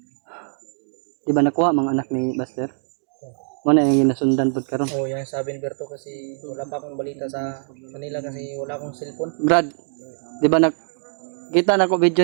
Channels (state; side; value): silent; left; 64 dB below the other